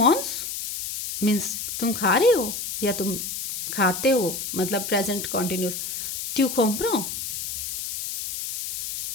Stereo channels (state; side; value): noise; left; hiss, 5 dB below the sound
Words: मीन्स तुम खा रहे हो या तुम खाते हो, मतलब प्रेजेंट कॉन्टिन्यूस. ट्यू कॉम्प्रो